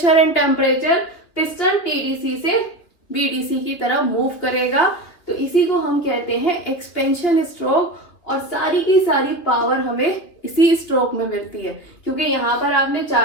and temperature piston TDC से बीडीसी की तरफ मूव करेगा। तो इसी को हम कहते हैं एक्सपेंशन स्ट्रोक। और सारी की सारी पावर हमें इसी स्ट्रोक में मिलती है, क्योंकि यहाँ पर आपने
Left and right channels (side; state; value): right; late; 3.1 ms